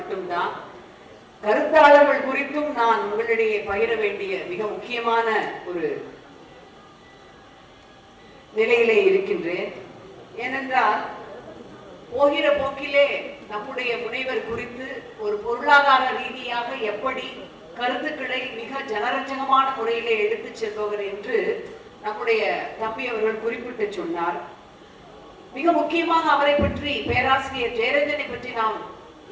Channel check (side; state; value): both; identical; correlation 1.00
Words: கருத்தாளர்கள் குறித்தும் நான் உங்களிடையே பகிர வேண்டிய மிக முக்கியமான ஒரு நிலையிலே இருக்கின்றேன். ஏனென்றால் போகிற போக்கிலே நம்முடைய முனைவர் குறித்து ஒரு பொருளாதார ரீதியாக எப்படி கருத்துக்களை மிக ஜனரஞ்சகமான முறையிலே எடுத்துச் செல்பவர் என்று நம்முடைய தம்பி அவர்கள் குறிப்பிட்டு சொன்னார். மிக முக்கியமாக அவரை பற்றி, பேராசிரியர் ஜெயரஞ்சனை பற்றி நாம்